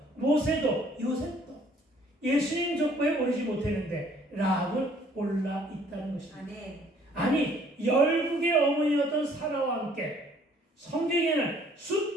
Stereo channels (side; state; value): both; normal; correlation 0.59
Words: 모세도 요셉도 예수님 족보에 오르지 못했는데 라합은 올라 있다는 것입니다. 아니 열국의 어머니였던 사라와 함께 성경에는